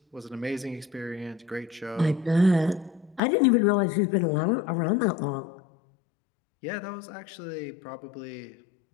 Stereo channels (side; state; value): right; drops out; at 3.2 s